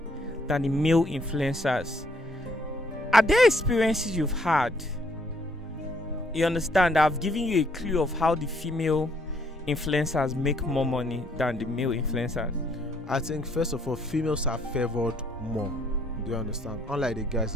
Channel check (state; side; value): normal; both; correlation 0.66